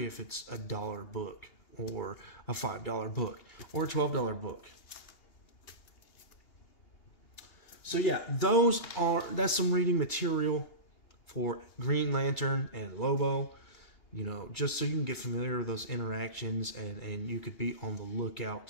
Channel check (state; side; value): late; right; 2.8 ms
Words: if it's $1 book or a $5 book or a $12 book. So yeah, that's some reading material for Green Lantern and Lobo. You know, just so you can get familiar with those interactions, and you could be on the